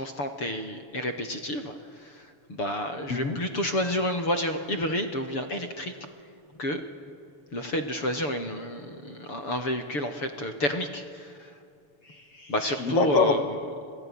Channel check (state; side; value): late; right; 6.9 ms